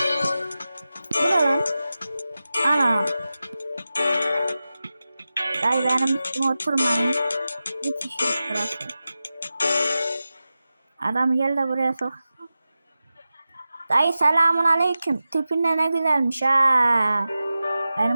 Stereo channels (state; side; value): inverted; both; correlation -0.94